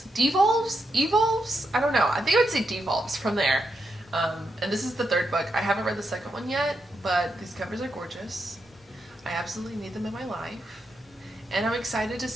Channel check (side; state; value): both; normal; correlation 0.83